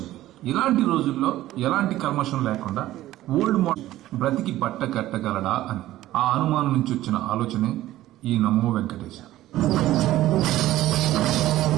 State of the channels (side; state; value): left; quieter; 15.0 dB